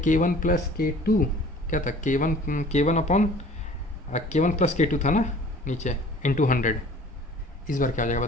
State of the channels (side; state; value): both; normal; correlation 0.48